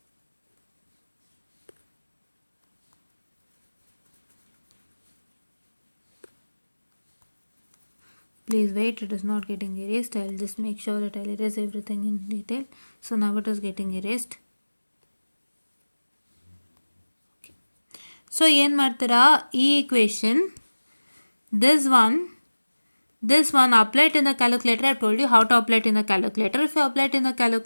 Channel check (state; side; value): inverted; both; correlation -1.00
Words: Please wait, it is not getting erased. I'll just make sure that I'll erase everything in detail. So now it is getting erased. Okay. So ಏನು ಮಾಡ್ತೀರಾ, ಈ equation, this one apply it in the calculator. I've told you how to apply it in the calculator. If you apply it in the